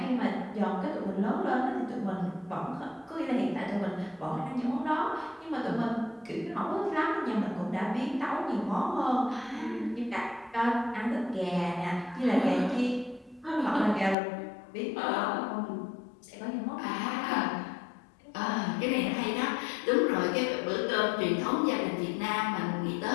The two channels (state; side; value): drops out; right; at 14.2 s